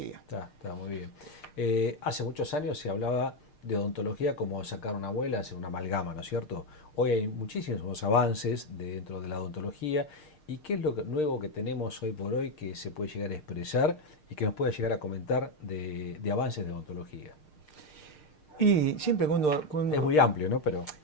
Está muy bien. Hace muchos años se hablaba de odontología como sacar una muela, hacer una amalgama, ¿no es cierto? Hoy hay muchísimos avances dentro de la odontología. ¿Y qué es lo nuevo que tenemos hoy por hoy que se puede llegar a expresar y que nos pueda llegar a comentar de avances de odontología? Y siempre cuando es muy amplio, ¿no? Pero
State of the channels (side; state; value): right; late; 6.6 ms